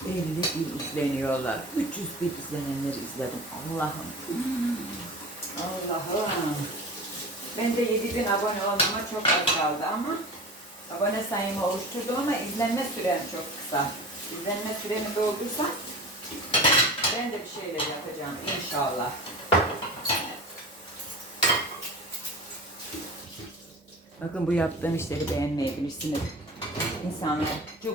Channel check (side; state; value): both; normal; correlation 0.35